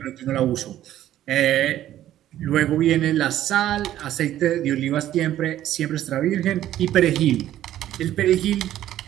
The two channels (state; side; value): quieter; left; 12.7 dB